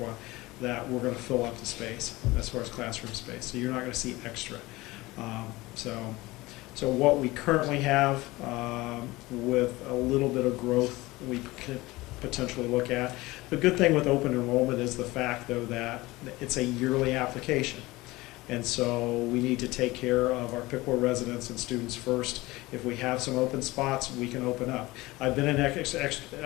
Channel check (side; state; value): right; quieter; 20.3 dB